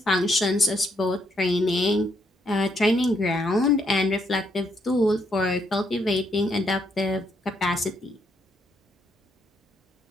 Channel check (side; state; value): both; normal; correlation 0.74